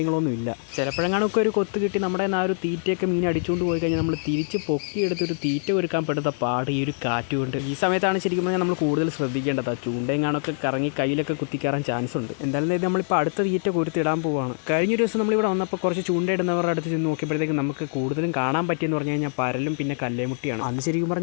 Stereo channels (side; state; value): right; silent; digital silence